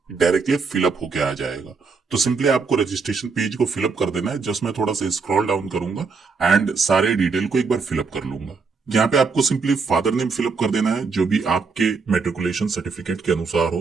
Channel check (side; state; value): left; quieter; 4.8 dB